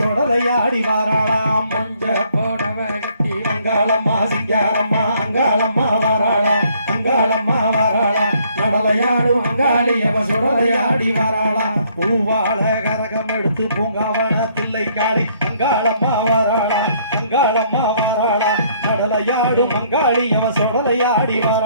வாராளா மஞ்ச போடவ கட்டி அங்காளம்மா சிங்காரம்மா அங்காளம்மா வாராளா அங்காளம்மா வாராளா நடலையாடு அங்காளி அவ சுடலையாடி வாராளா பூவாழ கரகம் எடுத்து பூங்காவன தில்லை காளி அங்காளம்மா வாராளா அங்காளம்மா வாராளா நடலையாடு மங்காளி அவ சுடலையாடி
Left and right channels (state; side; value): inverted; both; correlation -0.65